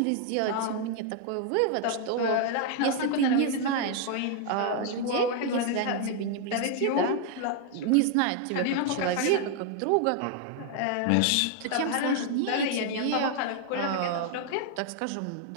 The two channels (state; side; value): different; both; correlation 0.00